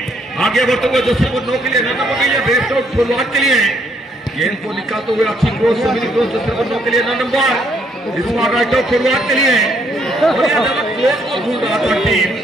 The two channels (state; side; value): normal; both; correlation 0.70